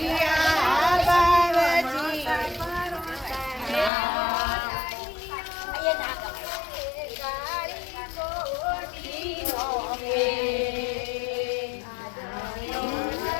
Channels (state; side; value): drops out; right; at 3.9 s